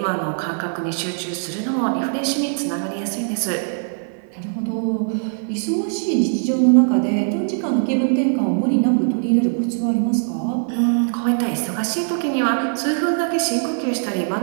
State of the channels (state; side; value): silent; left; 56 dB below the other